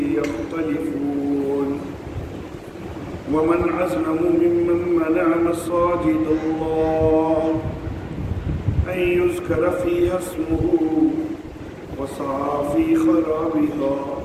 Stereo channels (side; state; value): both; identical; correlation 1.00